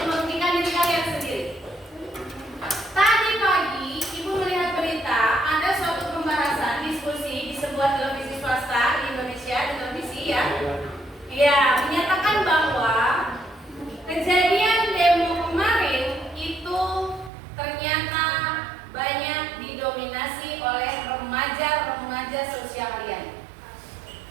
merugikan diri kalian sendiri. Tadi pagi Ibu melihat berita ada suatu pembahasan diskusi di sebuah televisi swasta di Indonesia, di televisi ya. Ya, menyatakan bahwa kejadian demo kemarin itu ternyata banyak didominasi oleh remaja-remaja sosial liar.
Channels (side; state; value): left; drops out; at 17.3 s